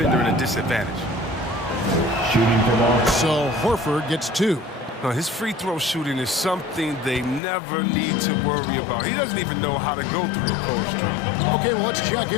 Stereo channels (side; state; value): right; drops out; at 7.4 s